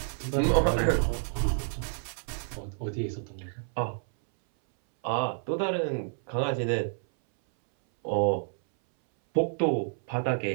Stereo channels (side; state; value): left; silent; 59 dB below the other